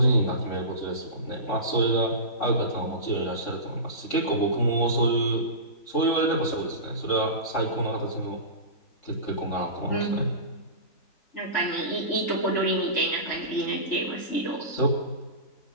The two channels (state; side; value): late; right; 3.5 ms